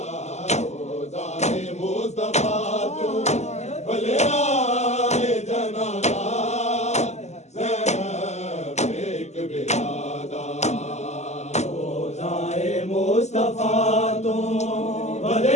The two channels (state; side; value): late; right; 0.33 ms